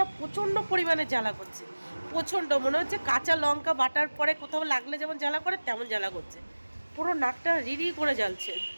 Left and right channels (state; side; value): inverted; both; correlation -1.00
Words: প্রচণ্ড পরিমাণে জ্বালা করছে, প্রচণ্ড, মনে হচ্ছে কাঁচা লঙ্কা বাটার পরে কোথাও লাগলে যেমন জ্বালা করে তেমন জ্বালা করছে, পুরো নাকটা রিরি করে জ্বলছে,